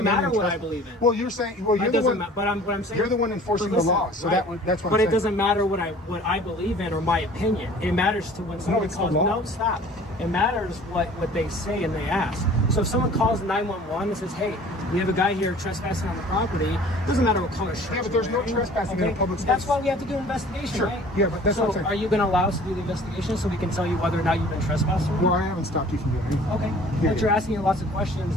come in matter and what I trespass. believe in. Well, you're saying, well, you're It the doesn't one. what I'm saying. You're the one enforcing But listen, the law, so right. that's what But I'm it saying. doesn't matter what I believe in or my opinion. It matters to when someone it's the calls. law. No, stop. It matters what they say and they ask. So if someone calls 911 and says, "Hey, we have a guy here trespassing on the property," it doesn't matter what color shirt. Yeah, but you're there's no wearing, trespassing in a public space. That's why we have to do an investigation, Sure. right? Yeah, but that's so what I'm saying. are you going to allow us to do the investigation so we can tell you whether or not you've been trespassed? Or not? Well, I haven't stopped you from doing anything. Okay. Yeah, But you're asking lots of questions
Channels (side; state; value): both; normal; correlation 0.48